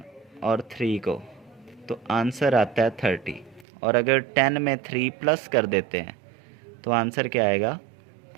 और 3 को तो आंसर आता है 30, और अगर 10 में 3 प्लस कर देते हैं तो आंसर क्या आएगा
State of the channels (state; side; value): drops out; left; at 3.7 s